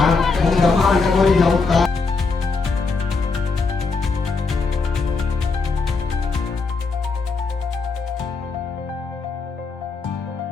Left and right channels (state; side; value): quieter; right; 4.3 dB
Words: ओम ब्रह्मांडकोटि समुत्ताय